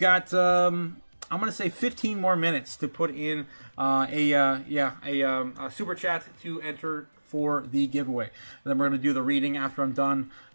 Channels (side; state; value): both; inverted; correlation -1.00